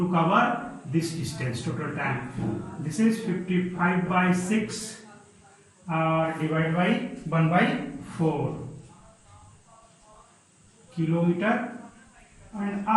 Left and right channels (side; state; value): both; identical; correlation 1.00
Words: cover this distance, total time. This is 55 by 6 divided by 1 by 4 kilometer an